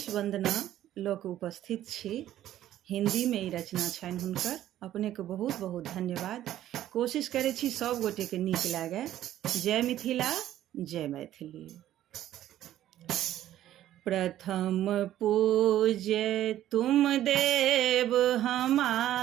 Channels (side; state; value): left; quieter; 12.7 dB